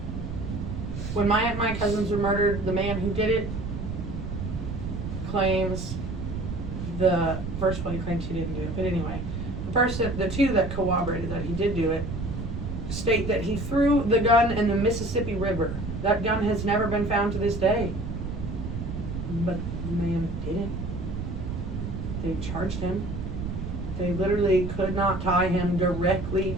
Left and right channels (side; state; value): right; noise; rumble, 5 dB below the sound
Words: When my cousins were murdered, the man who did it claims first one he claims he didn't do it, but anyway, the two that corroborated that he did do it state that he threw the gun in the Mississippi River. That gun has never been found to this day. But the man didn't. They charged him. They literally could not tie him directly